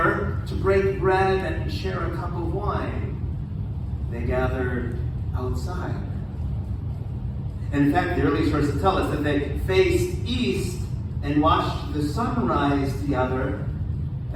to break bread and share a cup of wine? They gathered outside. And in fact, the early sources tell us that they faced east and watched the sunrise together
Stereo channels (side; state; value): both; identical; correlation 1.00